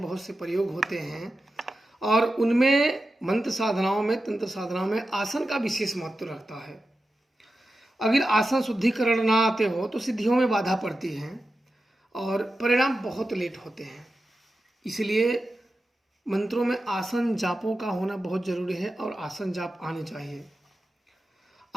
बहुत से प्रयोग होते हैं और उनमें मंत्र साधनाओं में, तंत्र साधनाओं में आसन का विशेष महत्व रहता है। अगर आसन शुद्धिकरण ना आते हो तो सिद्धियों में बाधा पड़ती है और परिणाम बहुत लेट होते हैं। इसलिए मंत्रों में आसन जापों का होना बहुत जरूरी है और आसन जाप आने चाहिए।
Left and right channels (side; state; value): both; normal; correlation 0.92